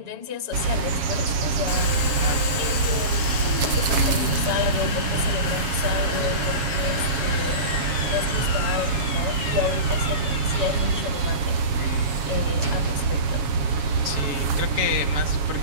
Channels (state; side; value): late; left; 7.2 ms